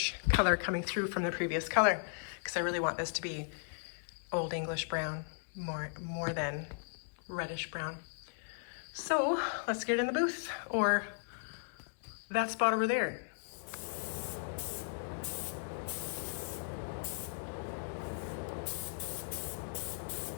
color coming through from the previous color, because I really want this to be Old English brown more than reddish brown. So let's get it in the booth, or that spot over there.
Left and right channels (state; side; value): silent; right; digital silence